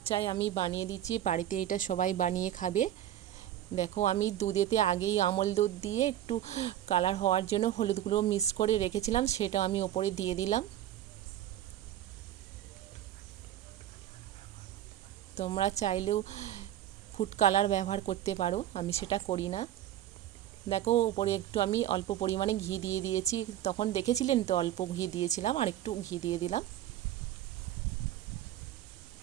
আমি বানিয়ে দিচ্ছি, বাড়িতে এটা সবাই বানিয়ে খাবে। দেখো আমি দুধেতে আগেই আমল দুধ দিয়ে একটু কালার হওয়ার জন্য হলুদ গুঁড়ো মিক্স করে রেখেছিলাম, সেটা আমি ওপরে দিয়ে দিলাম। তোমরা চাইলেও ফুড কালার ব্যবহার করতে পারো, আমি সেটা করি না। দেখো ওপরে একটু আমি অল্প পরিমাণে ঘি দিয়ে দিয়েছি, তখন দেখেছিলেন তো অল্প ঘি দিয়েছিলাম, আর একটু ঘি দিয়ে দিলাম।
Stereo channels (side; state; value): left; quieter; 12.2 dB